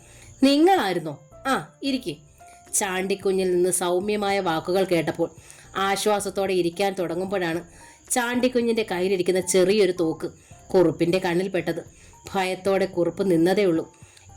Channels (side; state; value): both; identical; correlation 1.00